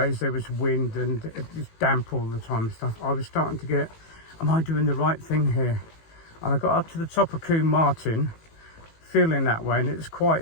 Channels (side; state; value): right; late; 18 ms